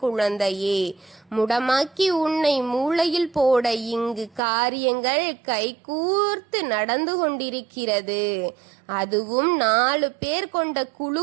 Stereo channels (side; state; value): left; drops out; at 4.4 s